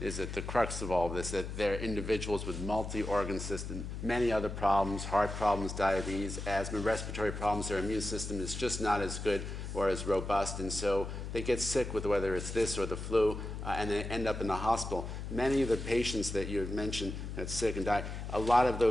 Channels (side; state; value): left; noise; hum, 6 dB below the sound